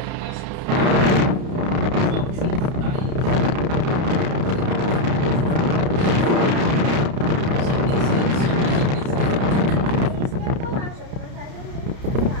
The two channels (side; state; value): left; late; 30 ms